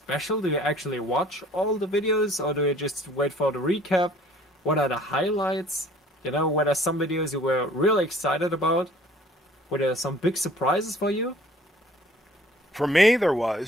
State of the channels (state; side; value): normal; both; correlation 0.54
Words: Do you actually watch all the videos, or do you just wait for the recap? What are the highlights? Were there some videos you were really excited about? Were there some big surprises for you? For me, there